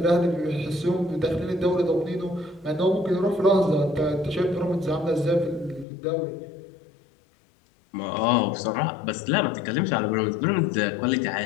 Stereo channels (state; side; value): drops out; right; at 5.9 s